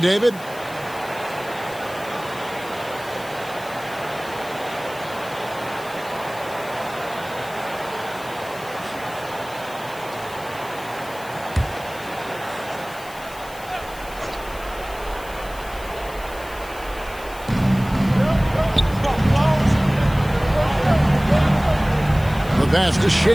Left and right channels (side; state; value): left; noise; hiss, 18 dB below the sound